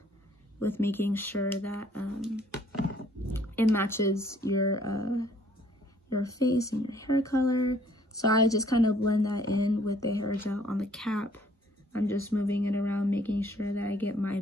with making sure that it matches your face and your hair color. So I just kind of blend that in with the hair gel on the cap. I'm just moving it around, making sure that I get my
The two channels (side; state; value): both; normal; correlation 0.61